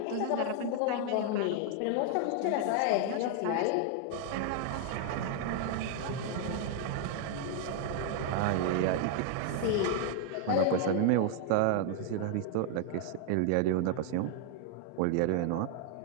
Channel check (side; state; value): both; different; correlation 0.00